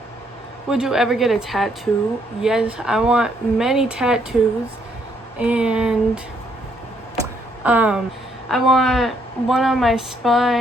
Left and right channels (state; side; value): normal; both; correlation 0.71